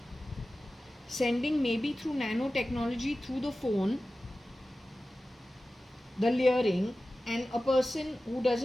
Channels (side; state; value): both; normal; correlation 0.95